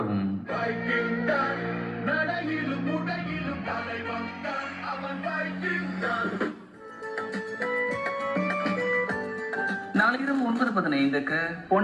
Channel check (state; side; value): identical; both; correlation 1.00